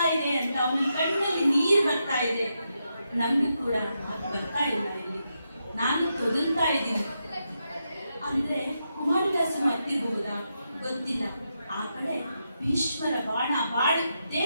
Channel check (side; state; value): both; inverted; correlation -0.84